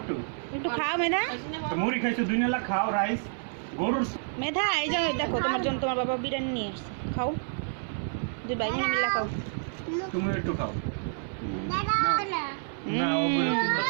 একটু খাও মেধা তো মুড়ি খাইছো 2 নালা খাও রাইস গরুর মেধা এই যে দেখো তোমার জন্য তোমার বাবা বিরিয়ানি নিয়ে আসছে খাও দুই ভাই বোনে মিলে খাও তুমি একটু খাও না না ওগুলো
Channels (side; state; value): left; silent; 58 dB below the other